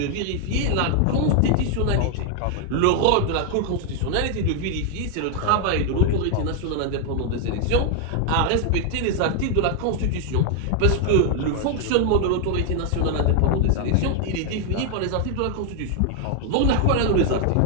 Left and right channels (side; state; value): both; different; correlation 0.00